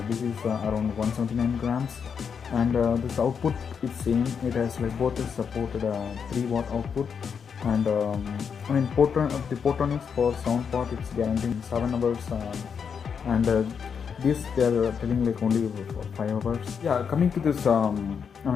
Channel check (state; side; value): quieter; right; 6.7 dB